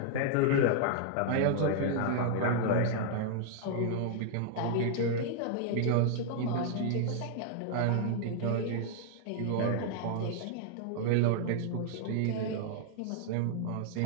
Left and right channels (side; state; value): both; different; correlation -0.01